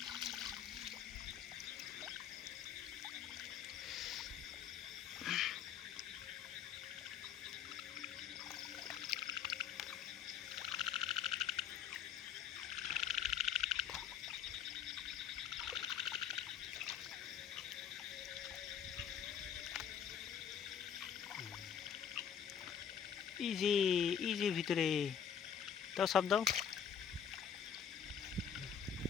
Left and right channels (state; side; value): quieter; right; 8.4 dB